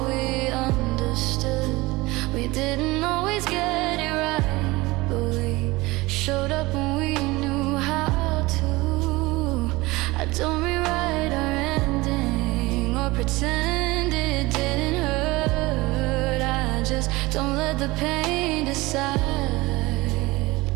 let the pain decide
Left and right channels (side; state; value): left; quieter; 21.5 dB